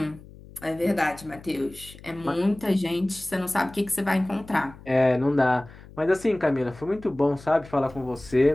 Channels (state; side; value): noise; left; hum, 20 dB below the sound